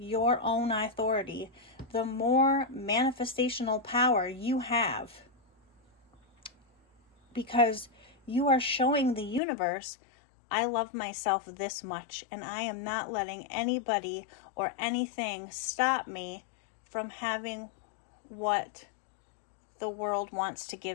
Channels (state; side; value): drops out; right; at 9.4 s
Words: own authority, the more manifestational power you have. Because you are showing the universe, I love myself this much, and I am not letting anybody or anything stop me from having what the world wants to